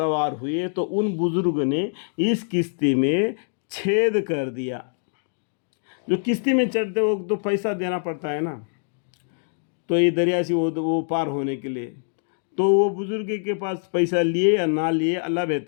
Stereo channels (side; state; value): right; silent; digital silence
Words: ہوئے تو ان بزرگ نے اس کشتی میں چھید کر دیا۔ جو کشتی میں چڑھتے وقت تو پیسہ دینا پڑتا ہے نا، تو یہ دریا سے وہ پار ہونے کے لیے، تو وہ بزرگ کے پاس پیسہ لیے یا نہ لیے اللہ